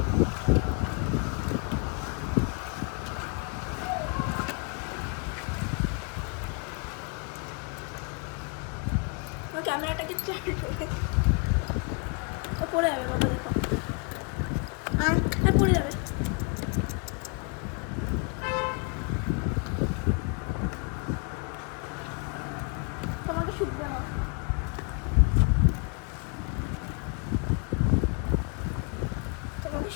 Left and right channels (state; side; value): quieter; right; 34.5 dB